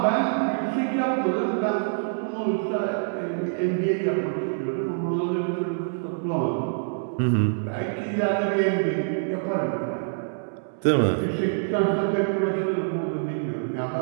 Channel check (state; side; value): silent; left; 61 dB below the other